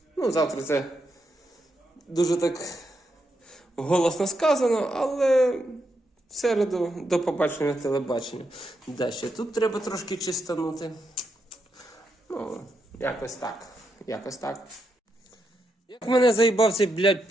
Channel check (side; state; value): both; normal; correlation 0.82